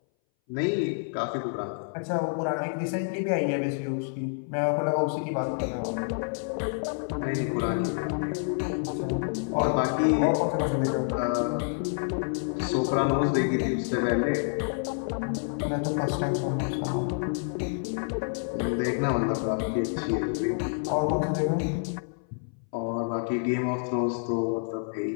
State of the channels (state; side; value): silent; right; 59 dB below the other